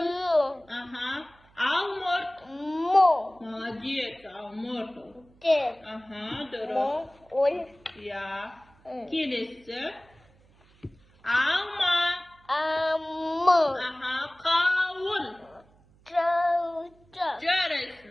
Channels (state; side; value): noise; right; hum, 30 dB below the sound